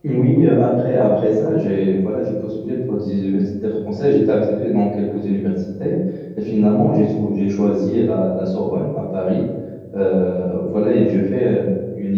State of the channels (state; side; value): identical; both; correlation 1.00